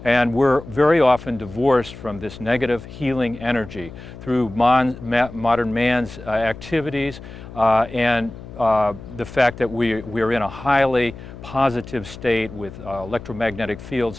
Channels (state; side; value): noise; left; hum, 15 dB below the sound